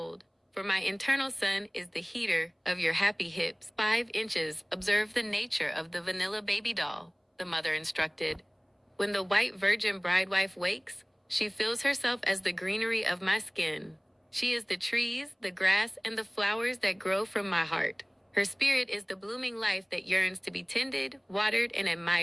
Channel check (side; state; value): both; identical; correlation 1.00